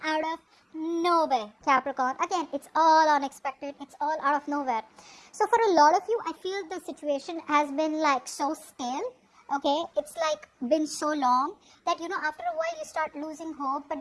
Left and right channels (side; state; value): both; identical; correlation 1.00